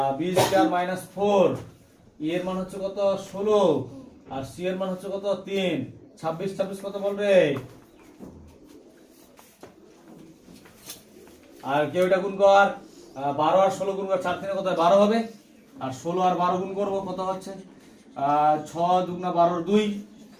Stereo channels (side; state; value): both; identical; correlation 1.00